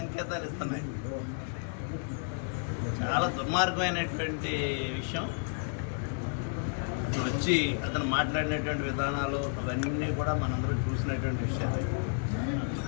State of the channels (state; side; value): silent; right; 57 dB below the other